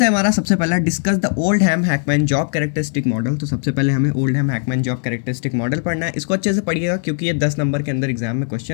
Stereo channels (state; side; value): silent; right; digital silence